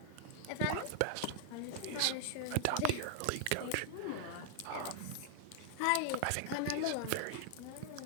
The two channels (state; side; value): different; both; correlation 0.00